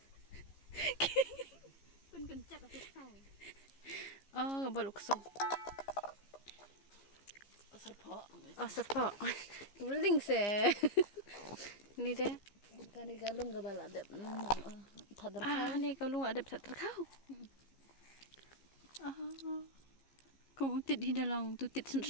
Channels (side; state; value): right; late; 15 ms